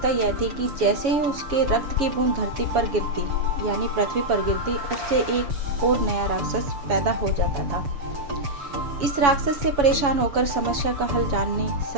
यह थी कि जैसे ही उसके रक्त की बूंद धरती पर गिरती यानी पृथ्वी पर गिरती, उससे एक और नया राक्षस पैदा हो जाता था। इस राक्षस से परेशान होकर समस्या का हल जानने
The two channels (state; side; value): late; left; 7.1 ms